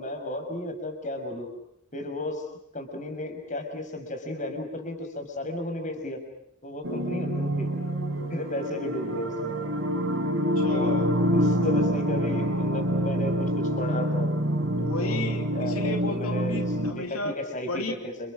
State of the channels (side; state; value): both; normal; correlation 0.40